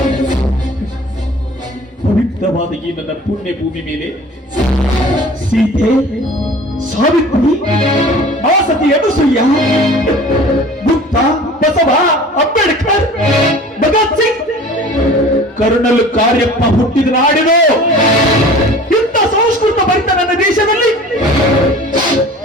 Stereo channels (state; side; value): normal; both; correlation 0.43